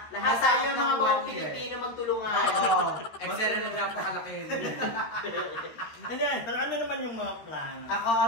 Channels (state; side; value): late; right; 13 ms